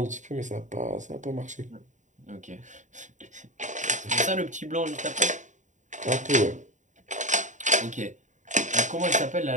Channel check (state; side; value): late; left; 0.36 ms